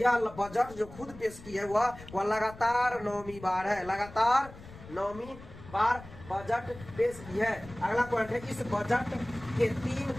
बजट जो खुद पेश की है वह लगातार 9वीं बार है, लगातार 9वीं बार बजट पेश की है। अगला पॉइंट है, इस बजट के 3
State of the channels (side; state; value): left; noise; rumble, 17 dB below the sound